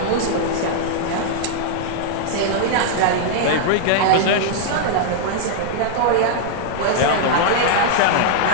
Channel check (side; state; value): both; different; correlation -0.01